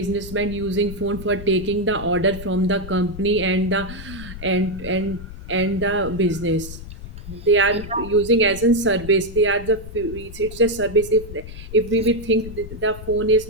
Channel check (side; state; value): left; noise; rumble, 12 dB below the sound